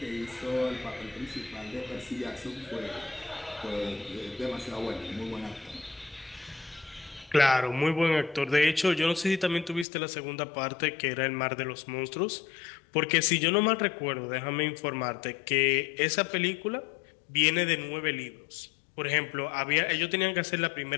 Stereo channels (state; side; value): drops out; right; at 9.9 s